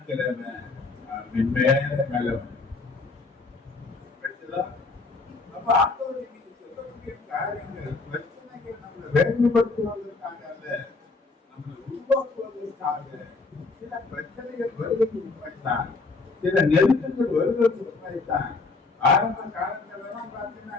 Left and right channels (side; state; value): right; quieter; 3.8 dB